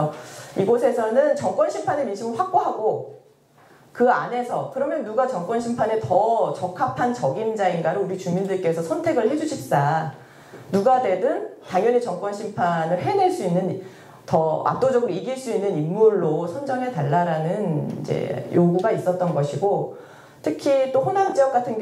이곳에서는 정권 심판의 민심을 확보하고 그 안에서 그러면 누가 정권 심판에 더 적합한 적임자인가를 우리 주민들께서 선택을 해주십사. 누가 되든 당연히 정권 심판을 해낼 수 있는 더 압도적으로 이길 수 있는 인물로 선정해 달라라는 이제 요구가 있었던 것이고 특히 또 호남 지역 같은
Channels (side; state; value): both; identical; correlation 1.00